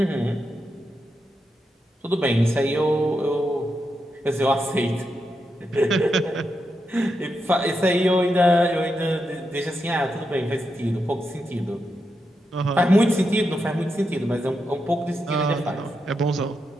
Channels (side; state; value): both; normal; correlation 0.85